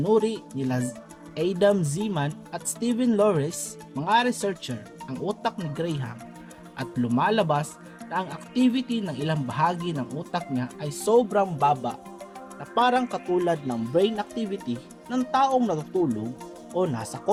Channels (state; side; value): identical; both; correlation 1.00